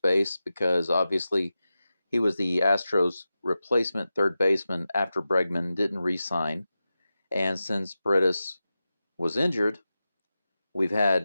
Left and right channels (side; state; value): both; inverted; correlation -0.92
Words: base because obviously he was the Astros' replacement third baseman after Bregman didn't re-sign. And since Paredes was injured, we've